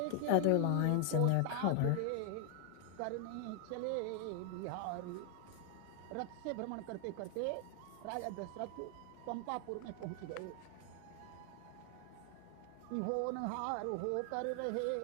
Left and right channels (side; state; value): both; different; correlation 0.00